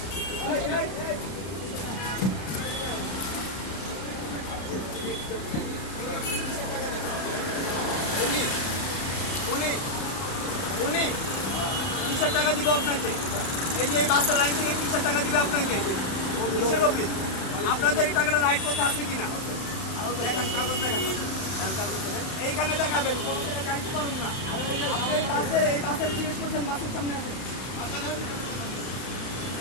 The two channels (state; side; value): late; right; 31 ms